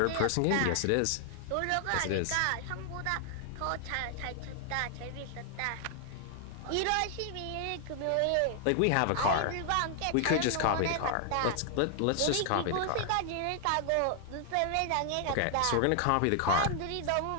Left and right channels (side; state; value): both; different; correlation 0.00